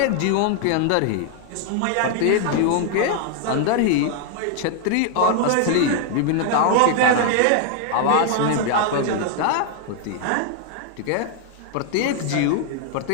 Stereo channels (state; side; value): different; both; correlation 0.00